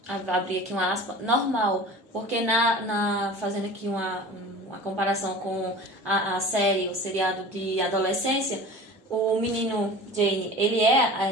vou abrir aqui uma aspa, normal, porque fazendo aqui uma comparação com a série, o seriado de adolescência, o menino Jane, ele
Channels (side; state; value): both; normal; correlation 0.39